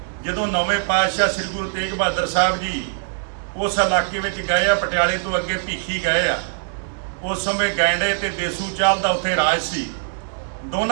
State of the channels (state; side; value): silent; left; digital silence